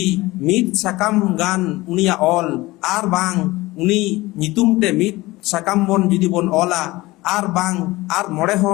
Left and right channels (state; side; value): quieter; right; 20.0 dB